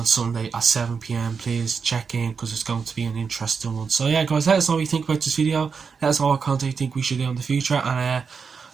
Sunday at 7 PM. Please check in, because it's going to be an interesting one. So yeah, guys, let us know what you think about this video. Let us know what content you think we should do in the future, and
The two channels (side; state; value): left; quieter; 5.6 dB